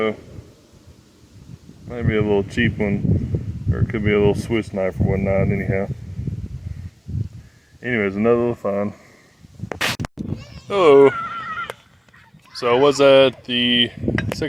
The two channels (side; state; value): both; identical; correlation 1.00